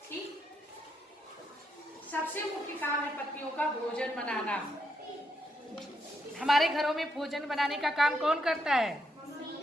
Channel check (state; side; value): normal; both; correlation 0.79